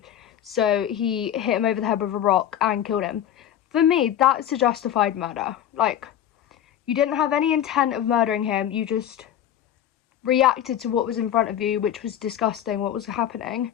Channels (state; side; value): quieter; right; 10.7 dB